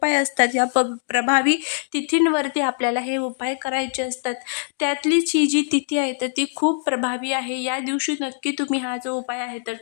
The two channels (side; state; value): right; silent; digital silence